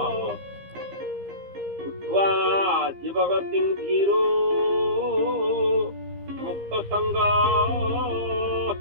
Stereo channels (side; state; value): left; late; 15 ms